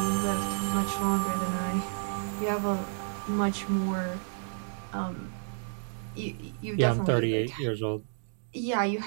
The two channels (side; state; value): left; silent; digital silence